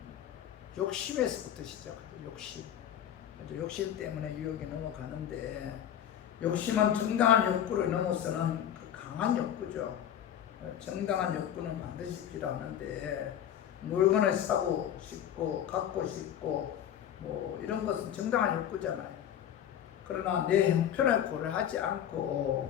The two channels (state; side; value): quieter; right; 10.1 dB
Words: 욕심에서부터 시작하죠. 욕심. 욕심 때문에 유혹에 넘어가는데 욕심은 정당한 욕구를 넘어서는 그 강한 욕구죠. 정당한 욕구는 반드시 필요하는데 물건을 사고 싶고 갖고 싶고 뭐 이런 것은 정당한 욕구잖아요. 그러나 내 형편을 고려하지